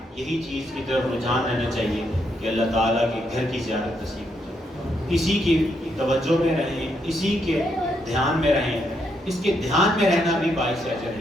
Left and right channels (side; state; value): both; normal; correlation 0.77